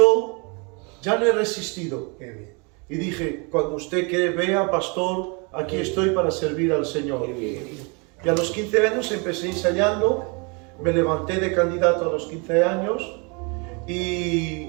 ya no he resistido. Y dije, cuando usted vea, pastor, aquí estoy para servir al Señor. Y a los 15 años empecé ensayando, me levanté de candidato a los 15 años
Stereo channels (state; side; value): quieter; left; 31.9 dB